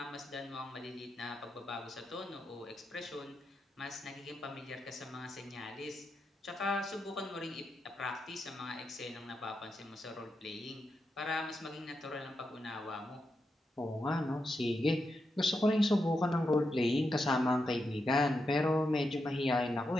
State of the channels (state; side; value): normal; both; correlation 0.86